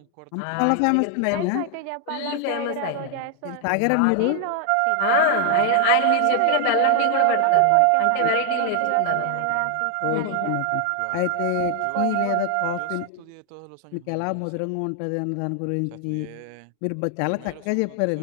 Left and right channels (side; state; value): both; different; correlation 0.00